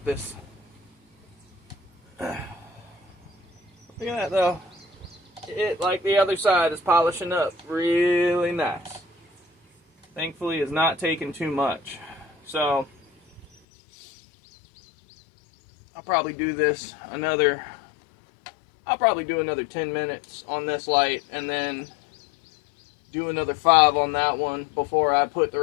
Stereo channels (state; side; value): drops out; right; at 13.5 s